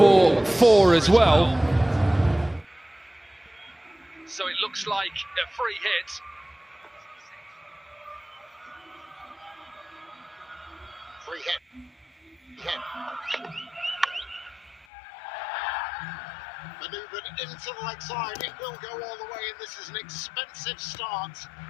4 as well. So it looks like a free hit. Free hit. Manoeuvred into the leg side, it will go all the way, and this is an expensive start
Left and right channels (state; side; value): drops out; right; at 14.9 s